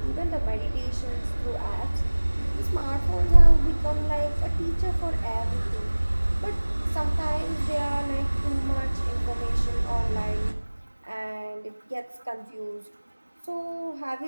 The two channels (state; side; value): inverted; both; correlation -1.00